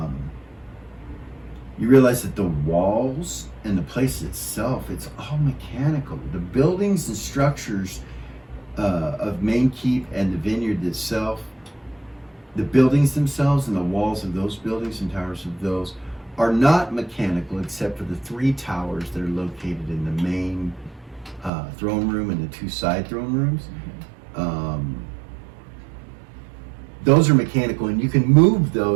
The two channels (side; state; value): left; drops out; at 21.5 s